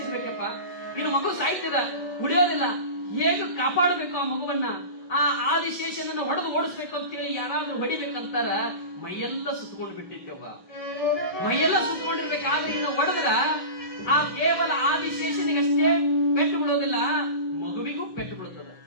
ಇನ್ನು ಮಗು ಸಾಯ್ತದ, ಉಳಿಯೋದಿಲ್ಲ. ಹೇಗೆ ಕಾಪಾಡಬೇಕು ಆ ಮಗುವನ್ನ? ಆ ಆದಿಶೇಷನನ್ನ ಹೊಡೆದು ಓಡಿಸ್ಬೇಕು ಅಂತ ಹೇಳಿ ಯಾರಾದ್ರೂ ಹೊಡಿಬೇಕಂತಾರ ಮೈಯೆಲ್ಲ ಸುತ್ಕೊಂಡು ಬಿಟ್ಟಿದ್ದೆವ್ವ. ಮೈಯೆಲ್ಲ ಸುತ್ಕೊಂಡಿರ್ಬೇಕಾದ್ರೆ ಇನ್ನು ಹೊಡೆದ್ರ ಆ ಕೇವಲ ಆದಿಶೇಷನಿಗಷ್ಟೇ ಪೆಟ್ಟು ಬಿಡೋದಿಲ್ಲ, ಮಗುವಿಗೂ ಪೆಟ್ಟು ಬಿಡುತ್ತದೆ.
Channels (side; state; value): right; late; 5.8 ms